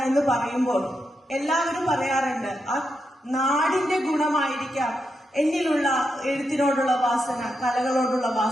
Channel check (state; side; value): normal; both; correlation 0.85